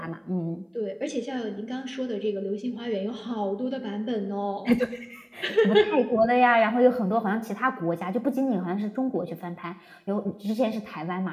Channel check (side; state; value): both; identical; correlation 1.00